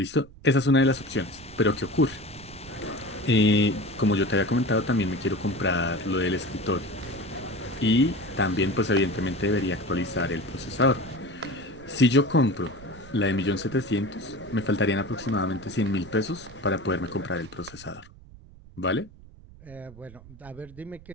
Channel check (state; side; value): noise; right; rumble, 21 dB below the sound